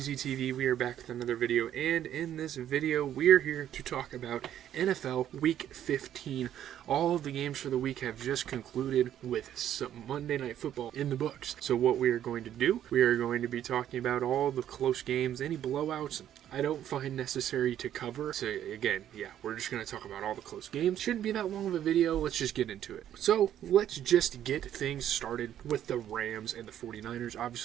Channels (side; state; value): left; quieter; 10.9 dB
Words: We are back with another video, and in this video we are here to talk about NFL Week 15. All of the games for the week have just concluded with some Monday Night Football in the books. So what we are going to do, we are going to be talking about all the close games, any blowouts I don't find necessary to cover. So again, we're just going to talk about all the close games. Shouldn't be that long of a video. Let's just get into it. So let's just get things started with the Rams and the 49ers.